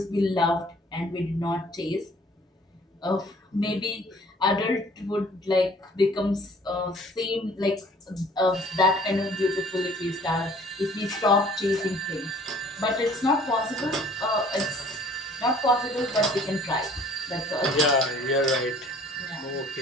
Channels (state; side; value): normal; both; correlation 0.54